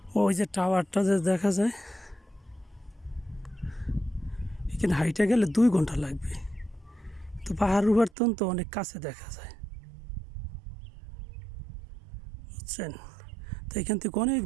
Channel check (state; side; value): drops out; left; at 8.1 s